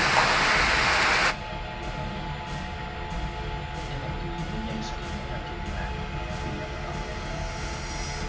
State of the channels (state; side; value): identical; both; correlation 1.00